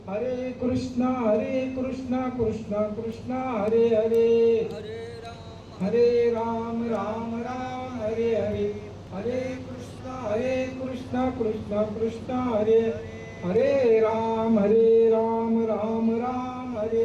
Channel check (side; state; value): both; identical; correlation 1.00